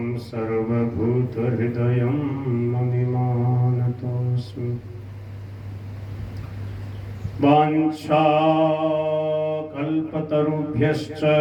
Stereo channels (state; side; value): identical; both; correlation 1.00